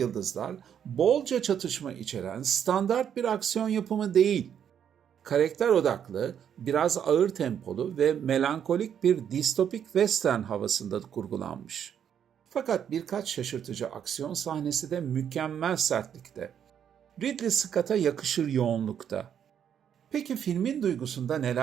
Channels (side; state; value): left; quieter; 8.8 dB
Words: bolca çatışma içeren standart bir aksiyon yapımı değil. Karakter odaklı, biraz ağır tempolu ve melankolik bir distopik western havasında kurgulanmış. Fakat birkaç şaşırtıcı aksiyon sahnesi de mükemmel sertlikte. Ridley Scott'a yakışır yoğunlukta. Peki filmin duygusunda